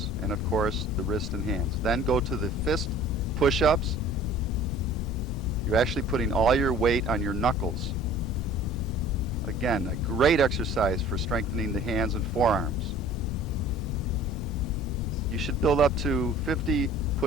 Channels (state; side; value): noise; left; rumble, 6 dB below the sound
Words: and of course the wrist and hands. Then go to the fist push-ups. You're actually putting all your weight on your knuckles. Again, a great exercise for strengthening the hands and forearms. You should build up to 50